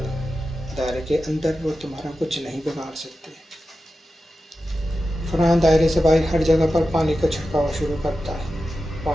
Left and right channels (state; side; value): normal; both; correlation 0.92